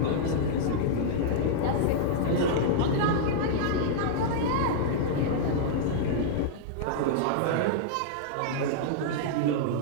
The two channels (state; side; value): different; both; correlation -0.02